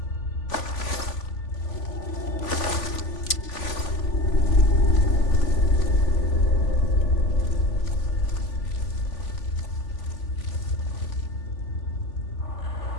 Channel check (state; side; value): late; right; 3.5 ms